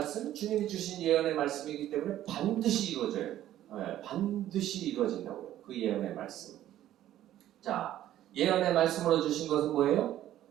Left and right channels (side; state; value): left; quieter; 12.7 dB